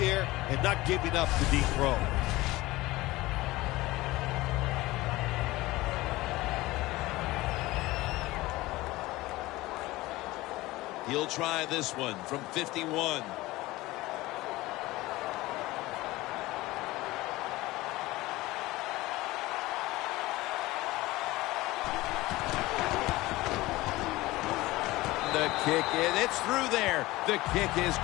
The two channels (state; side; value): quieter; right; 19.1 dB